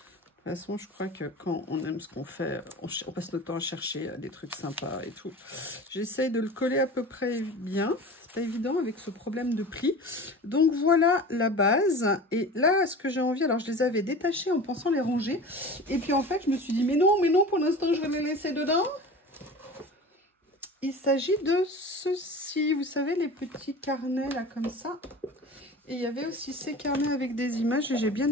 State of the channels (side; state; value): both; normal; correlation 0.36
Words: toute façon, je crois que quand on aime ce qu'on fait, on passe notre temps à chercher des trucs sympas et tout. J'essaye de le coller à peu près bien. C'est pas évident avec ce problème de pli. Donc voilà la base. Et là, ce que j'ai envie, alors je les avais détachés en pensant les ranger. Et puis en fait, je me suis dit, mais non, pour l'instant, je vais les laisser dedans. Il s'agit de ceci, vous savez, les petits carnets là comme ça. Et il y avait aussi ces carnets avec des images et j'ai bien